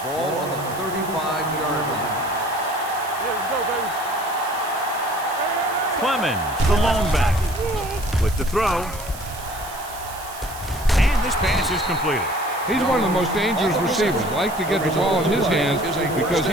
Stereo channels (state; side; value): noise; right; hiss, 15 dB below the sound